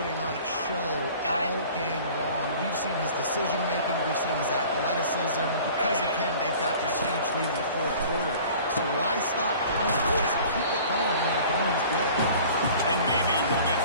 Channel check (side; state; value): both; inverted; correlation -0.46